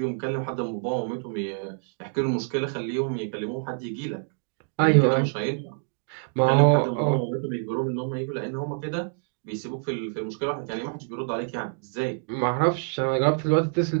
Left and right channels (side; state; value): left; silent; 61 dB below the other